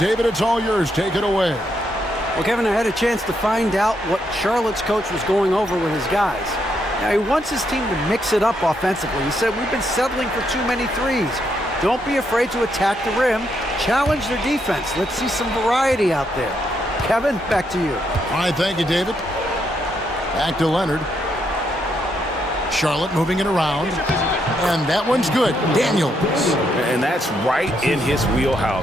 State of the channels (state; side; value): normal; both; correlation 0.77